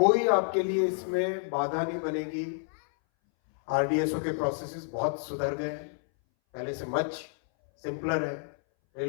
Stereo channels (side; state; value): right; silent; 58 dB below the other